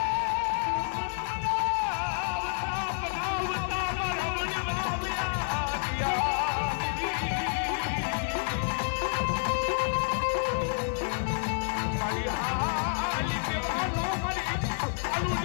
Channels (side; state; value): right; silent; 58 dB below the other